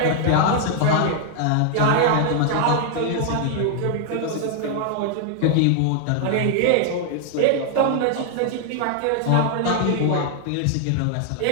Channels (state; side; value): different; both; correlation 0.00